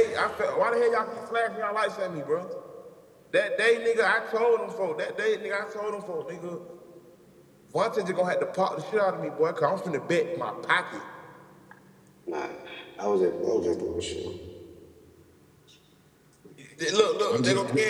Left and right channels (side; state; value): both; identical; correlation 1.00